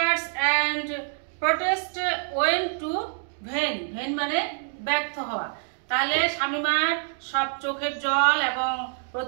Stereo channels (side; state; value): left; silent; 57 dB below the other